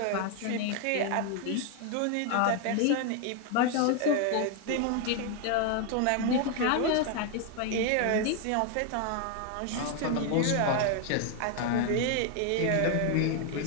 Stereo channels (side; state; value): both; different; correlation 0.00